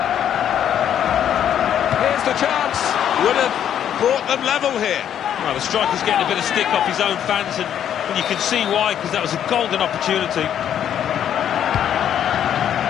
Here's the chance. Would have brought them level here. Well, the striker's getting a bit of stick off his own fans, and you can see why, because that was a golden opportunity.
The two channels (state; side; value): quieter; right; 9.7 dB